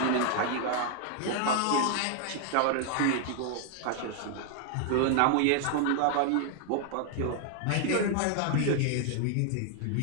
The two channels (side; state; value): both; different; correlation 0.00